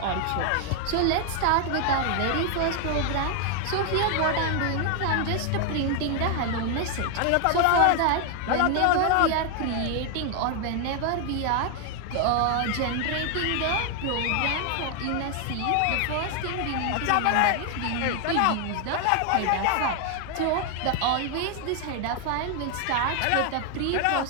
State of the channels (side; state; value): both; different; correlation 0.00